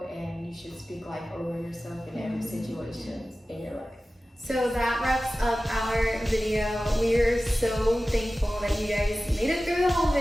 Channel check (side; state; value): both; normal; correlation 0.95